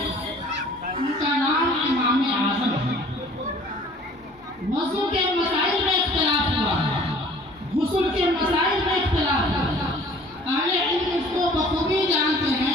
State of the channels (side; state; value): both; normal; correlation 0.51